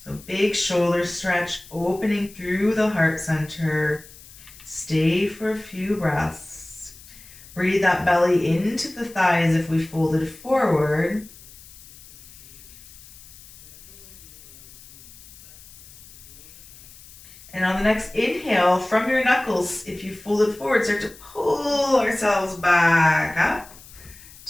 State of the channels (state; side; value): noise; left; hiss, 20 dB below the sound